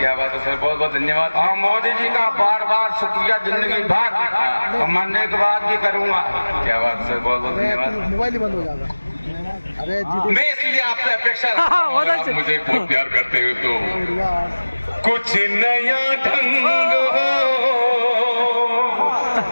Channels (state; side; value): inverted; both; correlation -1.00